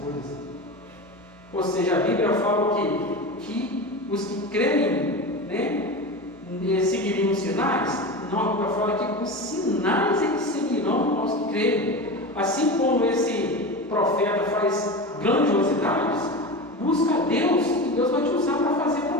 coisas. Ou seja, a Bíblia fala que os que creem, seguiriam os sinais. Não, a Bíblia fala que os sinais é que seguirão aos que creem. Assim como esse profeta faz grandiosidades, busca a Deus e Deus vai te usar para fazer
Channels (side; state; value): both; normal; correlation 0.26